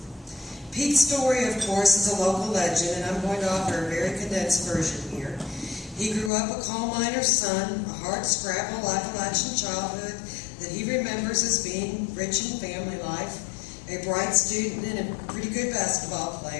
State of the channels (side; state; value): right; drops out; at 6.3 s